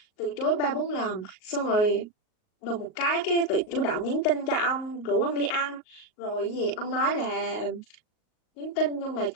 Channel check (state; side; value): late; right; 38 ms